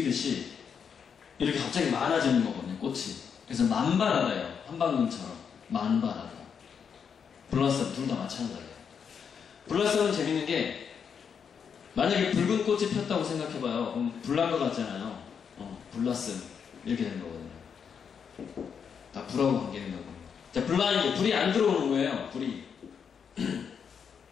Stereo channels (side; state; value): right; quieter; 6.9 dB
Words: 이렇게 갑자기 많아지는 거거든요, 꽃이. 그래서 만발하다예요. 한방눈처럼. 만발하다. 블러썸, 둘 다 마찬가지예요. 블러썸은 재밌는 게, 만약에 붉은 꽃이 폈다고 생각해봐요. 그럼 불난 것 같잖아요. 블러썸. 이렇게 되는 거거든요. 다 불하고 관계있는 거거든요. 자, 블라인드. 불이 안 들어오는 거예요, 불이.